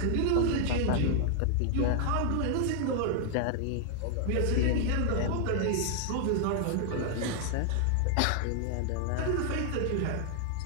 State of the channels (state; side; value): different; both; correlation 0.00